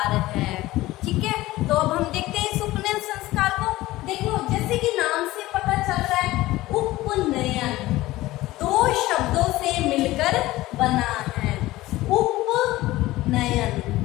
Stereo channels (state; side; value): quieter; right; 17.5 dB